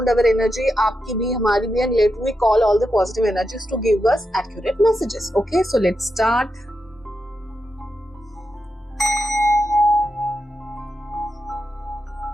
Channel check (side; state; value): both; normal; correlation 0.86